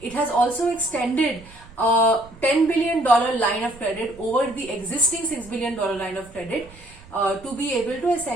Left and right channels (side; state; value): right; noise; rumble, 22 dB below the sound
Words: has also extended a $10 billion line of credit over the existing $6 billion line of credit to be able to